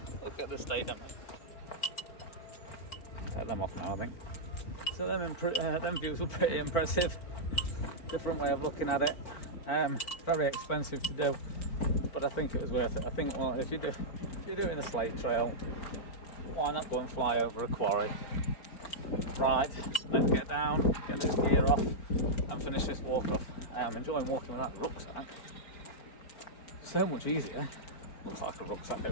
Look at the state of them. Take them off now, I think. So them views were pretty impressive. Different way of looking at it. Very expensive to do, but I think it was worth it. I think, well, if you're doing the Slate Trail, why not go and fly over a quarry? Right, let's get down, get this gear off, and finish this walk off. I'm enjoying walking with that rucksack. So much easier. Looks like a rucksack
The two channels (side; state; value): right; late; 4.4 ms